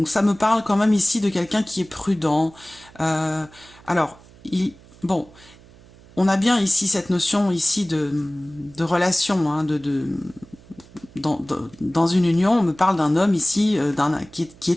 ça me parle quand même ici de quelqu'un qui est prudent. Bon, on a bien ici cette notion ici de relation, hein, dans une union, on me parle d'un homme ici qui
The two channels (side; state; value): right; noise; hum, 24 dB below the sound